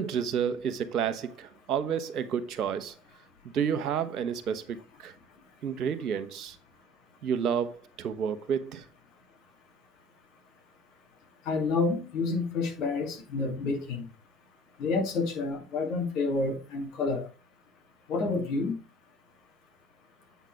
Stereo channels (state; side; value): normal; both; correlation 0.47